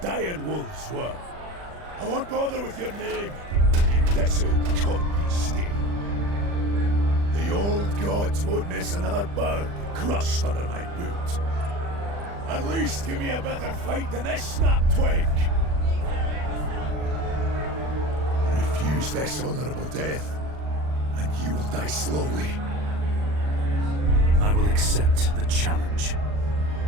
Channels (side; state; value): left; late; 40 ms